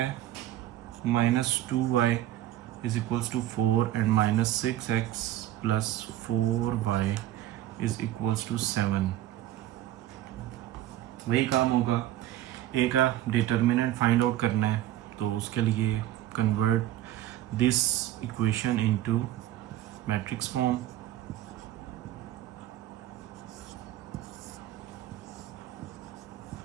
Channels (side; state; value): left; quieter; 13.7 dB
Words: -2y is equals to 4 and -6x plus 4y is equals to 7। वही काम होगा, ए का डिटर्मिनेंट फाइंड आउट करना है, तो उसके लिए convert this equation into matrix form.